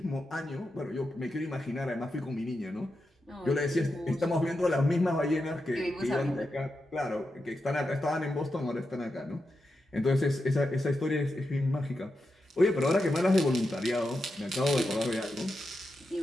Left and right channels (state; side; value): normal; both; correlation 0.88